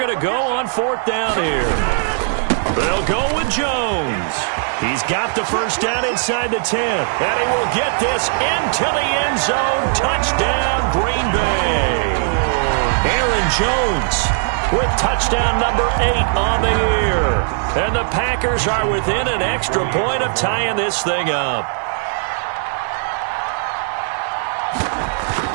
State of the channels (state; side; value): silent; left; digital silence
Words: to go on 4th down here. They'll go with Jones. He's got the first down inside the 10. And he will get this into the end zone. Touchdown, Green Bay. Aaron Jones with touchdown number 8 on the year. And the Packers are within an extra point of tying this thing up.